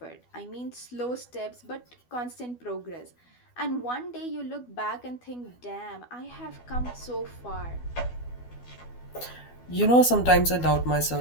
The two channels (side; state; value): right; late; 12 ms